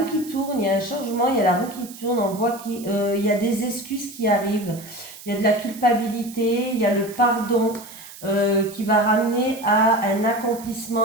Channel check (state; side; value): noise; right; hiss, 17 dB below the sound